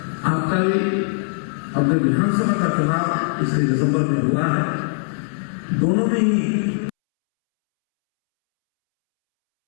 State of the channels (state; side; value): silent; right; 65 dB below the other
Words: आपका भी अपने विधानसभा का चुनाव इसलिए दिसंबर में हुआ है। दोनों में ही